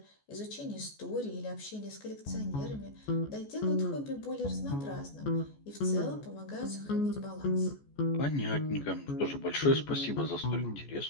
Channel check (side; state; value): right; late; 14 ms